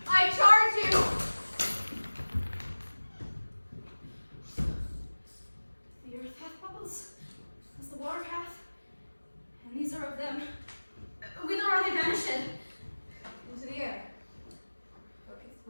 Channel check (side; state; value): both; inverted; correlation -1.00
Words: I charge you! The earth hath bubbles, as the water hath, and these are of them. Whither are they vanished? Into the air.